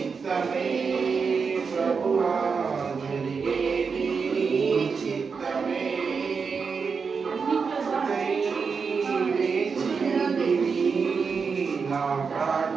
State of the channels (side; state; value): left; quieter; 5.4 dB